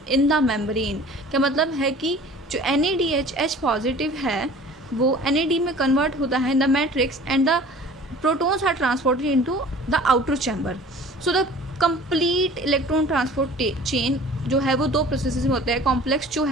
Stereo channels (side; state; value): both; normal; correlation 0.45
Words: in the membrane. क्या मतलब है कि जो NADH पॉजिटिव है वो NAD में कन्वर्ट होता है in the matrix, and the protons are transported into the outer chamber. So the complete electron transport chain जो है वो दो प्रोसेसेस में होता है. कॉम्प्लेक्स जो